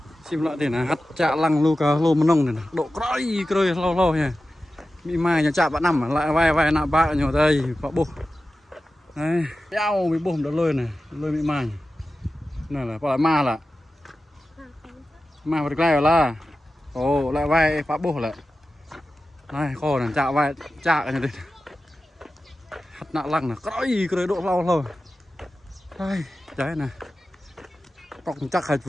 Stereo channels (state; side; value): normal; both; correlation 0.94